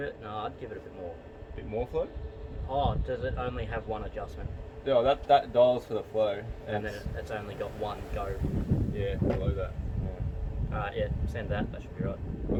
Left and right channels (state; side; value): identical; both; correlation 1.00